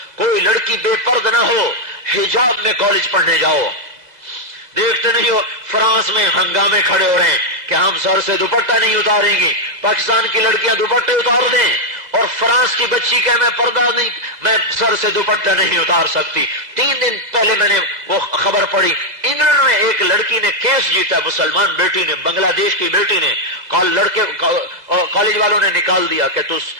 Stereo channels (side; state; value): left; late; 2.0 ms